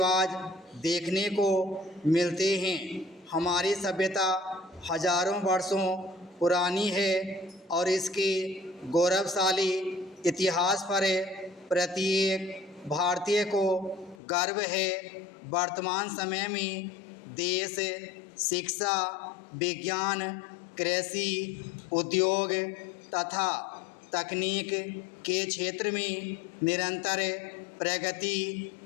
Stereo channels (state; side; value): drops out; right; at 14.2 s